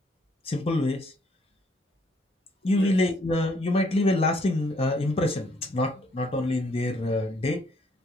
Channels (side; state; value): both; normal; correlation 0.67